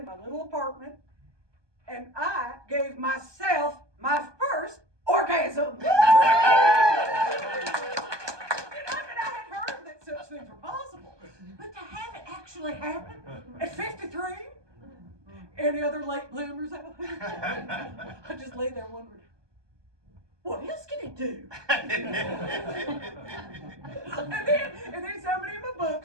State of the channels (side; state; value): left; late; 1.2 ms